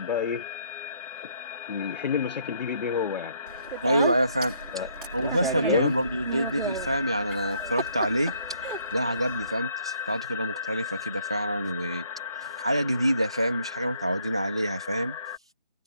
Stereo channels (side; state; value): both; inverted; correlation -0.67